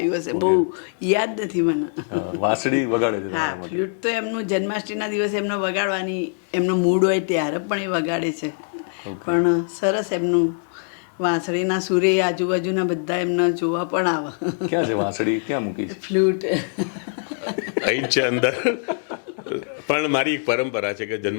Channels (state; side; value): silent; right; 64 dB below the other